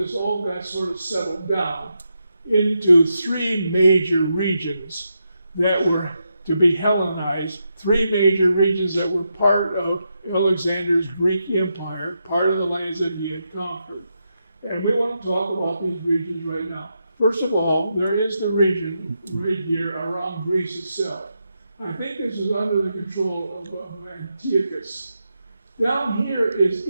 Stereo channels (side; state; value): both; inverted; correlation -0.84